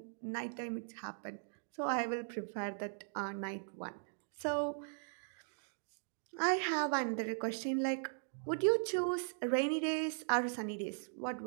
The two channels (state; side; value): silent; left; digital silence